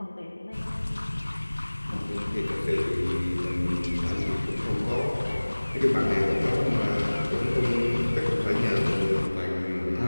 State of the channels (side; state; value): both; inverted; correlation -1.00